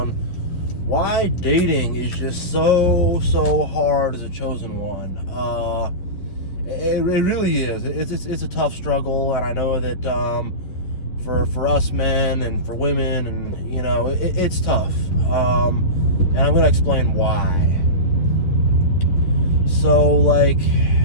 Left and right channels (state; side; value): late; right; 11 ms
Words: why dating is just so hard as a chosen one. It really is. It's a tough struggle, and I know that for us men and for women, and it's tough. And I'm gonna explain why. So, like,